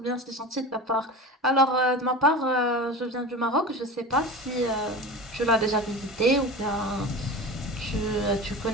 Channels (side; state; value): both; normal; correlation 0.31